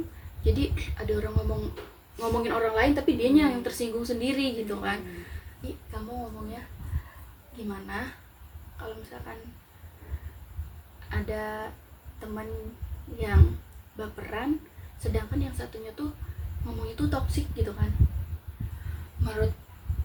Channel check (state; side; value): identical; both; correlation 1.00